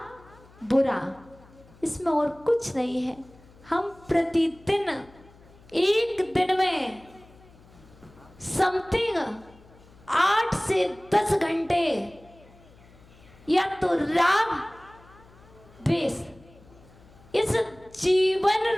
बुरा, इसमें और कुछ नहीं है। हम प्रतिदिन एक दिन में समथिंग 8 से 10 घंटे या तो राग द्वेष, इस जीवन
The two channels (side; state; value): left; noise; hum, 25 dB below the sound